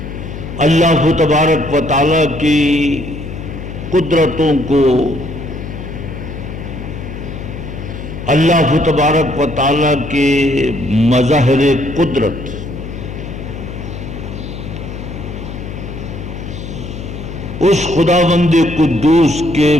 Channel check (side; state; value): left; noise; hum, 9 dB below the sound